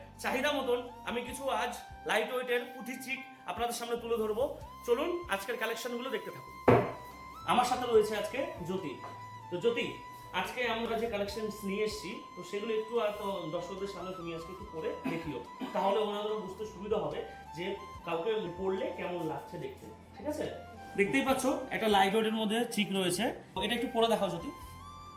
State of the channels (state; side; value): identical; both; correlation 1.00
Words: চাহিদা মতন আমি কিছু আজ লাইট ওয়েটের পুঁথির চিক আপনাদের সামনে তুলে ধরবো। চলুন আজকের কালেকশনগুলো দেখতে থাকুন। আমার সাথে রয়েছে আজকে জ্যোতি। তো জ্যোতি, আজকে আমরা যে কালেকশন নিয়ে এসেছি তো সেগুলো একটু দর্শকদের সামনে তুমি আজকে একটু পরে দেখিও, তাহলে ওনাদেরও বুঝতে সুবিধা হবে যে কাউকে পড়লে কেমন লাগছে দেখতে। ঠিক আছে? দেখতেই পাচ্ছ একটা লাইট ওয়েটের মধ্যে চিক রয়েছে, এটা একটু পরে দেখাও জ্যোতি।